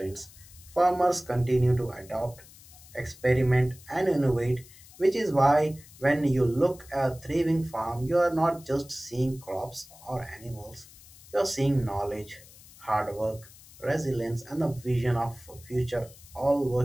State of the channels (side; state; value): left; noise; hiss, 22 dB below the sound